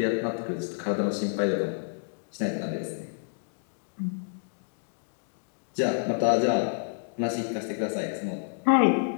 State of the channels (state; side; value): silent; right; digital silence